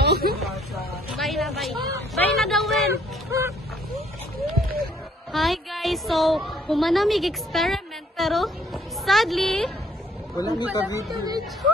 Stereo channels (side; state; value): both; normal; correlation 0.64